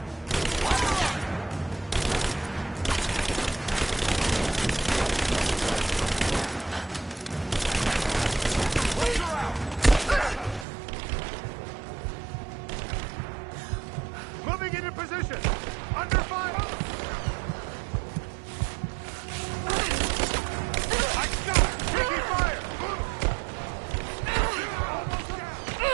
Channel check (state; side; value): drops out; left; at 10.7 s